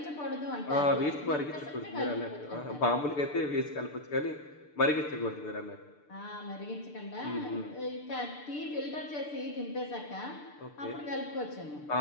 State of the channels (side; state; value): right; late; 6.8 ms